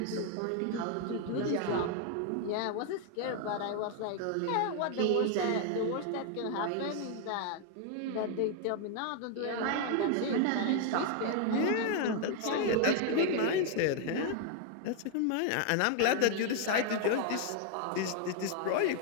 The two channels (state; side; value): different; both; correlation 0.00